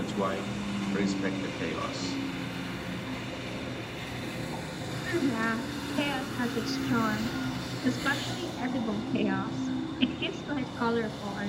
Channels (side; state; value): both; identical; correlation 1.00